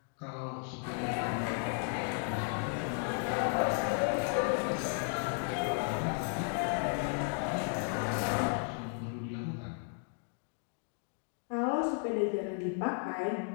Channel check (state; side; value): silent; right; 55 dB below the other